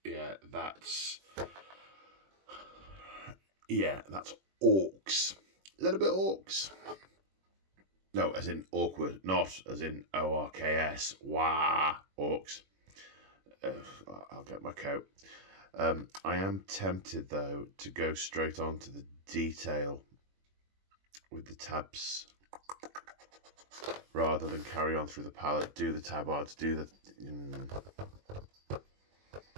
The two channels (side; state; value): left; late; 21 ms